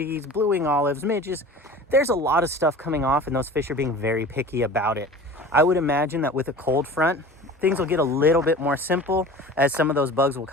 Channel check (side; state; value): both; normal; correlation 0.39